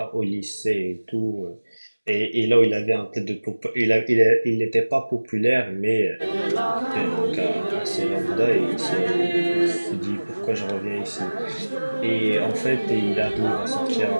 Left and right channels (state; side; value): inverted; both; correlation -1.00